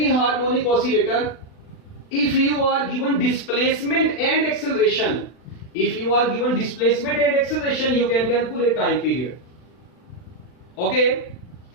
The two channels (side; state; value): right; late; 40 ms